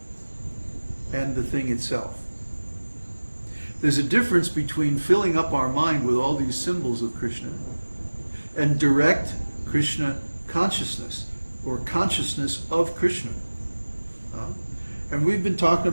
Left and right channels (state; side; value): inverted; both; correlation -1.00